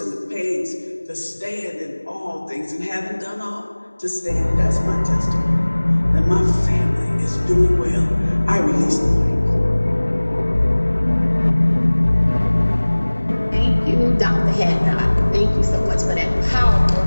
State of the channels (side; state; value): both; inverted; correlation -1.00